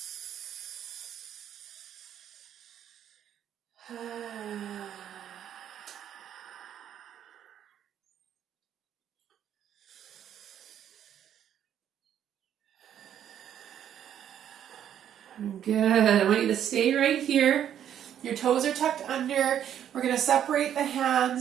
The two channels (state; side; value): quieter; left; 10.0 dB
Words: Good. I want you to stay right here. Your toes are tucked under. We're going to separate the